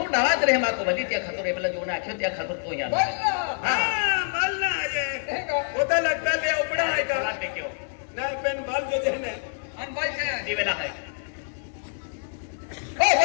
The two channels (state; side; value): silent; right; 61 dB below the other